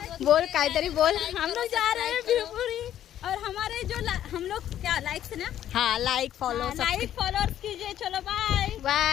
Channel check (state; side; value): quieter; right; 11.3 dB